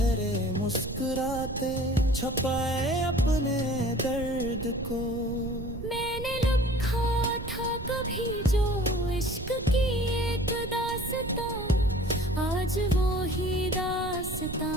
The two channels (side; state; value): right; noise; rumble, 9 dB below the sound